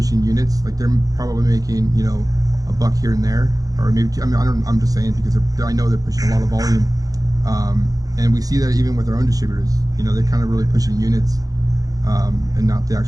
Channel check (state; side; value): late; left; 0.17 ms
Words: units. Like they're probably making a buck here and there, or maybe I'm just saying because I know they're pushing a lot of volume. And we see that even with our own distributors, they're kind of really pushing units, and not the